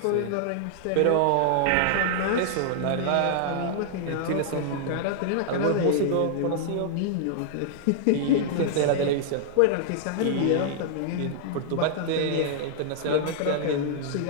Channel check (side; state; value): both; different; correlation -0.01